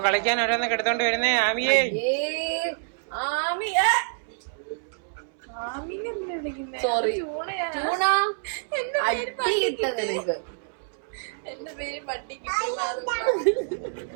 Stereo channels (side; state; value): left; silent; 60 dB below the other